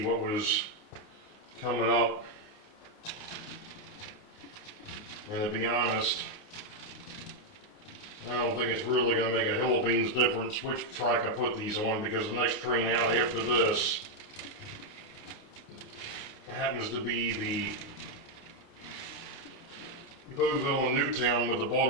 what was coming up. And to be honest, I don't think it's really going to make a hill of beans difference which track I put these on, because the next train out after this happens to be the Boeville and Newtown with the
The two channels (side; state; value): right; late; 29 ms